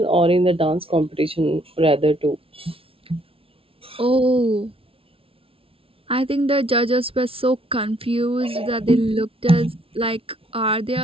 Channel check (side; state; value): left; late; 0.26 ms